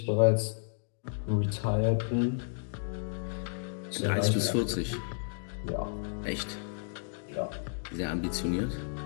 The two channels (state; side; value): silent; right; digital silence